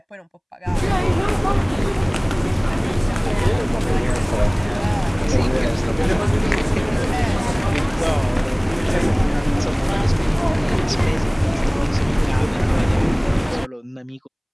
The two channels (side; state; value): both; identical; correlation 1.00